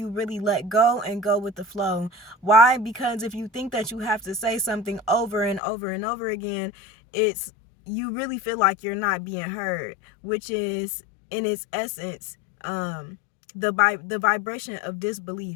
really let go and go with the flow. Why? Because if you think that you have to say something over and over and over again, it's you really feel like you're not being heard, which is in its essence the vibration of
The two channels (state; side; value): drops out; right; at 5.6 s